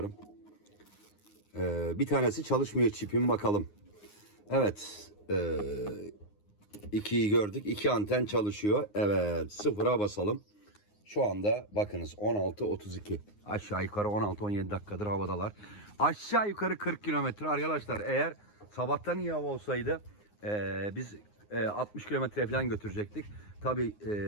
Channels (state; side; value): late; right; 9.6 ms